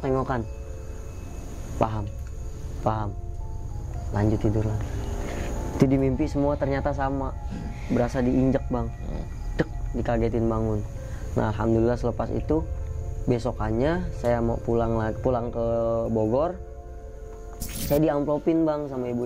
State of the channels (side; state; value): both; identical; correlation 1.00